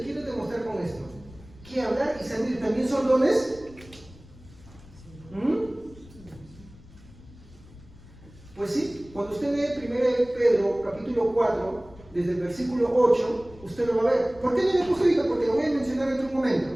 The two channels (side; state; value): left; noise; rumble, 21 dB below the sound